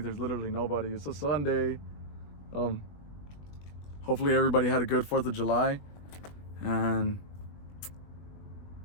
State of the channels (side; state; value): right; late; 20 ms